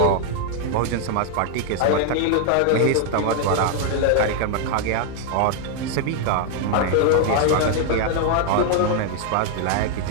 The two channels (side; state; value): both; different; correlation 0.00